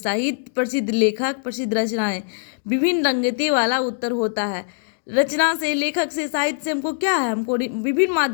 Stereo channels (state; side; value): silent; right; digital silence